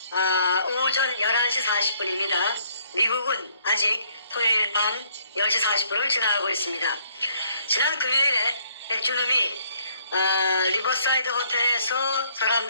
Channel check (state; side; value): inverted; both; correlation -0.65